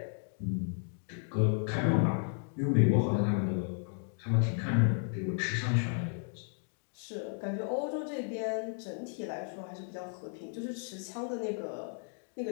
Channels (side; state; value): right; silent; 55 dB below the other